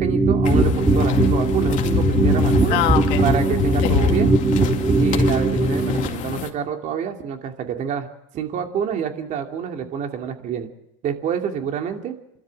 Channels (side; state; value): both; normal; correlation 0.57